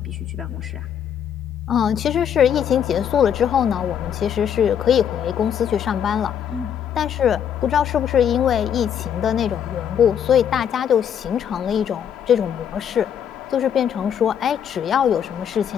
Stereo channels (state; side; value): quieter; right; 8.7 dB